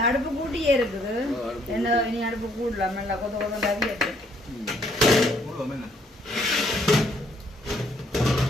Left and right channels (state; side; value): normal; both; correlation 0.67